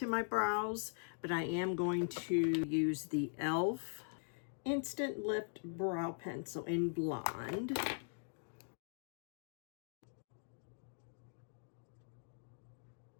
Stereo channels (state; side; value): silent; right; digital silence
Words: my brows, but I am going to use the e.l.f. Instant Lift Brow Pencil in Blonde.